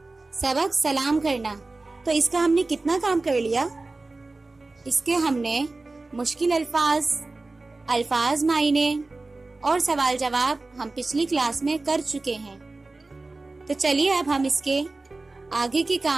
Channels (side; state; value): left; quieter; 3.3 dB